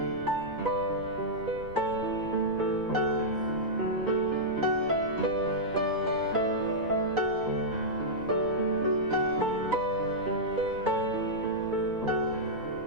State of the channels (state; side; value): noise; left; rumble, 17 dB below the sound